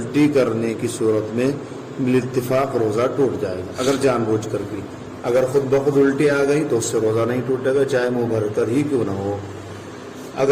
کرنے کی صورت میں بالاتفاق روزہ ٹوٹ جائے گا، اگر جان بوجھ کر کی۔ اگر خود بخود الٹی آ گئی تو اس سے روزہ نہیں ٹوٹے گا، چاہے منہ بھر کر ہی کیوں نہ ہو۔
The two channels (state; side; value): identical; both; correlation 1.00